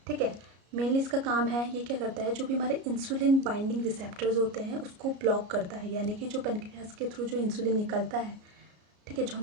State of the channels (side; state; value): left; late; 33 ms